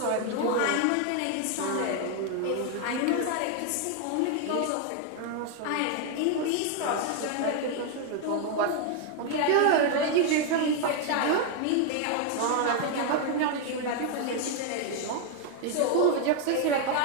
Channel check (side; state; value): both; different; correlation 0.00